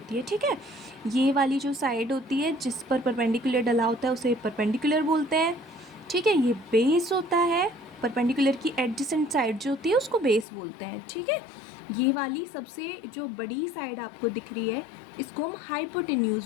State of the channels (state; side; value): drops out; right; at 10.5 s